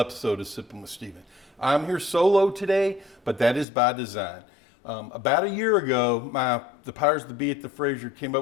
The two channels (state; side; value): drops out; right; at 3.7 s